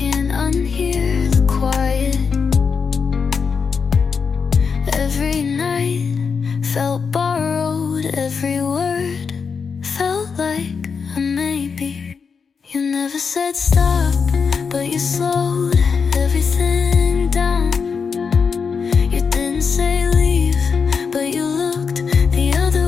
unhear the quiet. Every night felt borrowed, every word felt like a maybe. You never said stop, but you slowed everything down. You didn't say leave, but you looked the other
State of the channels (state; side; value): quieter; right; 5.7 dB